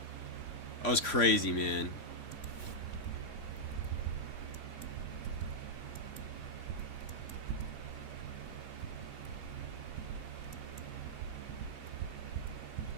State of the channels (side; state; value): right; late; 3.6 ms